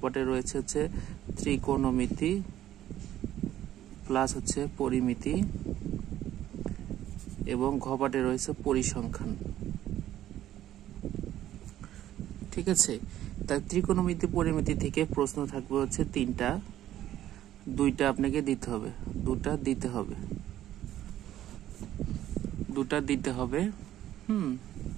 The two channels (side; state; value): left; quieter; 12.7 dB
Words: পার্টে রয়েছে ত্রিকোণমিতি প্লাস পরিমিতি এবং ঘ পার্টে রয়েছে পরিসংখ্যান। ঠিক আছে, তাই ত্রিকোণমিতি পরিমিতি থেকে প্রশ্ন থাকবে তিনটা, দুইটা আপনাকে দিতে হবে, দুটা দিতে হবে।